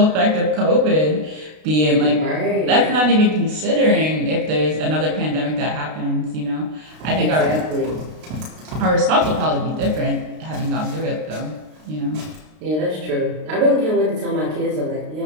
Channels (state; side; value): late; left; 32 ms